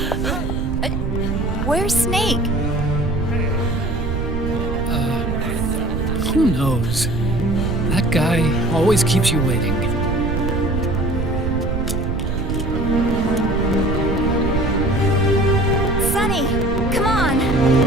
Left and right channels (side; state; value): right; noise; rumble, 2 dB below the sound